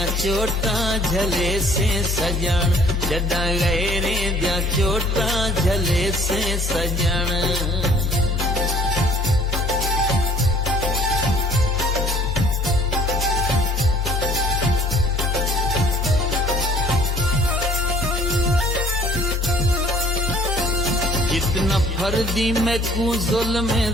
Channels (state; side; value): normal; both; correlation 0.55